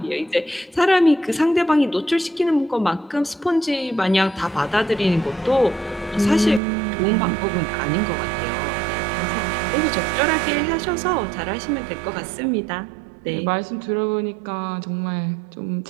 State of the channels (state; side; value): drops out; left; at 6.6 s